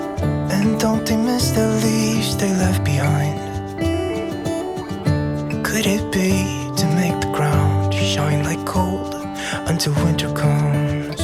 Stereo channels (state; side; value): identical; both; correlation 1.00